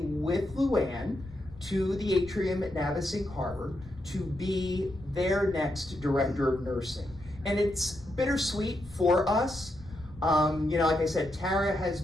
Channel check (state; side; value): noise; left; rumble, 18 dB below the sound